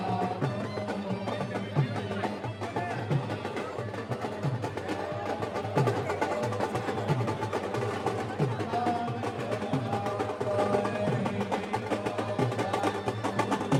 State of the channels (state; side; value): identical; both; correlation 1.00